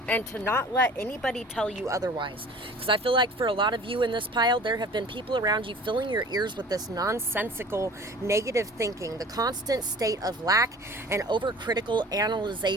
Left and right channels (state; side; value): normal; both; correlation 0.44